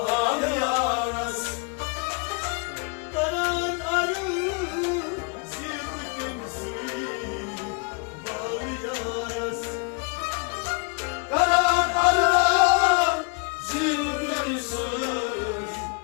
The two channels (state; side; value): quieter; right; 32.1 dB